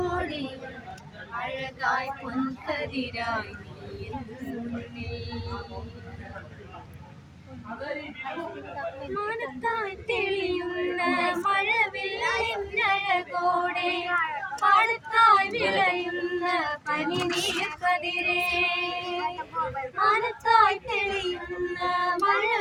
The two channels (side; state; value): both; identical; correlation 1.00